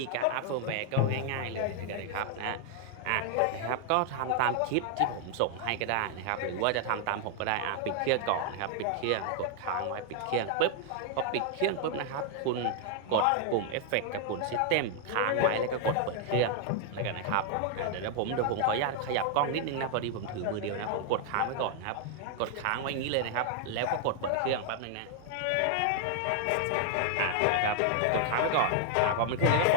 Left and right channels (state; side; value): different; both; correlation 0.00